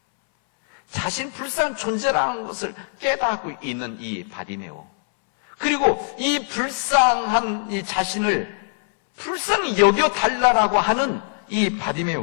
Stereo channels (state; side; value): silent; right; 64 dB below the other